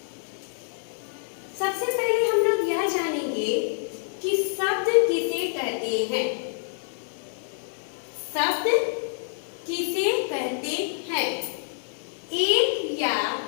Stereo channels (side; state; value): right; silent; digital silence